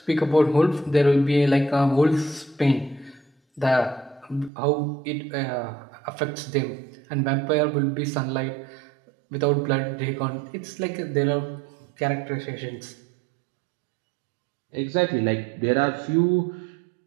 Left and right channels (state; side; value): drops out; left; at 4.5 s